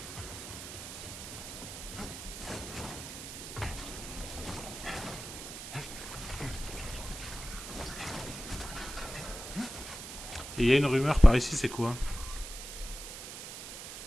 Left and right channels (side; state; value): right; noise; hiss, 10 dB below the sound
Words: Et il y a une rumeur par ici, c'est quoi?